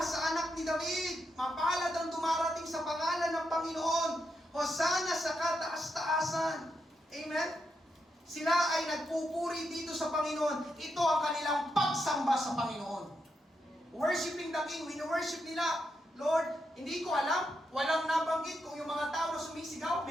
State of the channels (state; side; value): normal; both; correlation 0.83